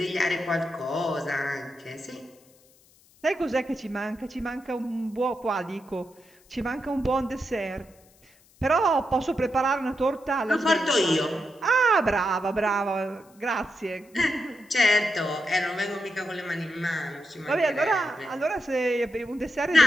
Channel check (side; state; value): left; noise; hiss, 30 dB below the sound